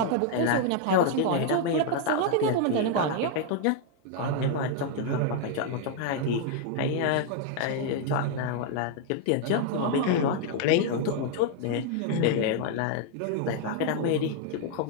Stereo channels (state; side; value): different; both; correlation 0.00